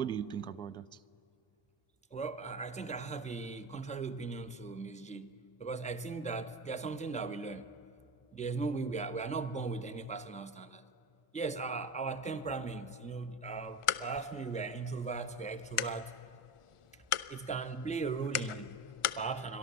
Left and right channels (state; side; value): late; right; 1.4 ms